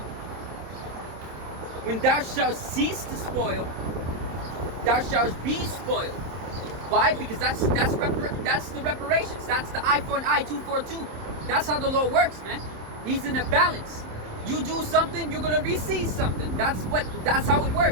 When thou shalt cease to spoil, thou shalt be spoiled. Why? Because that's the reparations. That's the eye for an eye, tooth for a tooth. That's how the Lord works, man. He's in a balance. You do something, you're gonna receive something. That's how it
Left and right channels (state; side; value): late; left; 27 ms